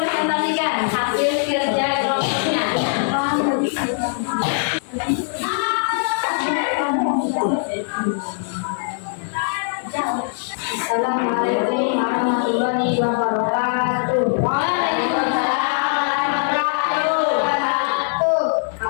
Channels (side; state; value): right; silent; digital silence